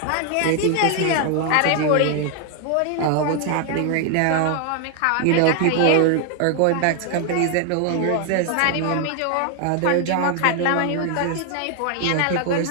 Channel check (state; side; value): different; both; correlation 0.00